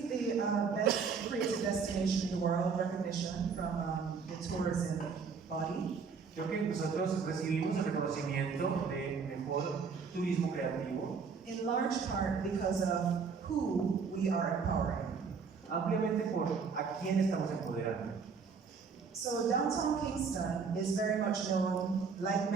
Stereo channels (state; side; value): quieter; left; 5.5 dB